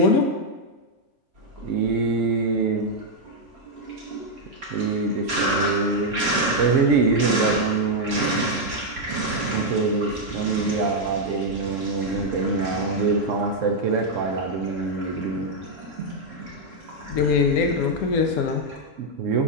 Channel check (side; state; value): both; normal; correlation -0.01